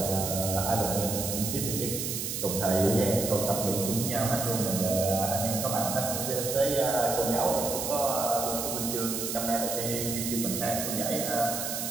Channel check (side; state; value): right; noise; hiss, 3 dB below the sound